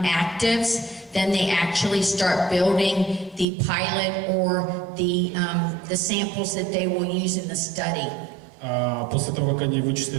actives, then they actually start building the pilot or the samples that they will use in the study. После того, как они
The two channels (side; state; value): left; drops out; at 3.5 s